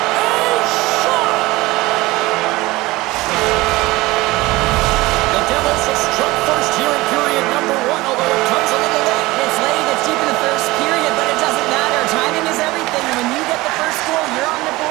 a shot! The Devils have struck first here in period number 1, although it comes a little late. It's late, it's deep in the first period, but it doesn't matter. Timing is everything. When you get the first goal, you're on the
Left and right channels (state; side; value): quieter; left; 20.2 dB